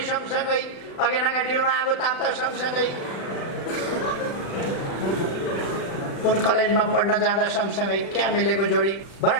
सँगसँगै, अगेनाका डिलमा आगो ताप्दा सँगसँगै, कुन कलेजमा पढ्न जाँदा सँगसँगै। क्या मिलेको जोडी।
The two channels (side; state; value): right; late; 36 ms